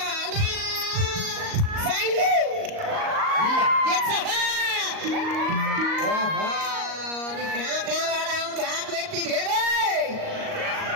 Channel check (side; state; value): left; late; 38 ms